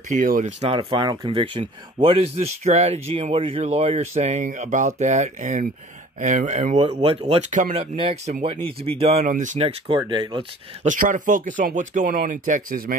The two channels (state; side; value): normal; both; correlation 0.49